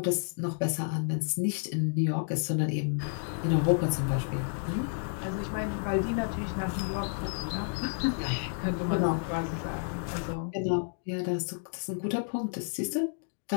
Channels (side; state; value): right; silent; digital silence